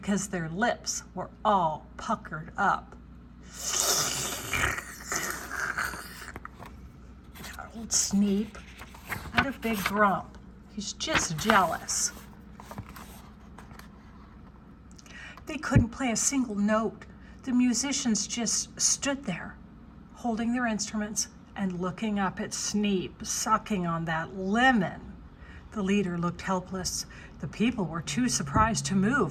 their lips were all puckered up. Old Sneep had a big grump. He's just jealous. They couldn't play a single note. The musicians just stood there, holding their instruments and looking up at Sneep, sucking on that lemon. The leader looked helpless. The people were too surprised to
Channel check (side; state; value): both; identical; correlation 1.00